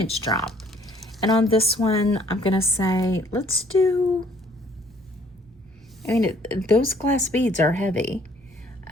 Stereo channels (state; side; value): normal; both; correlation 0.60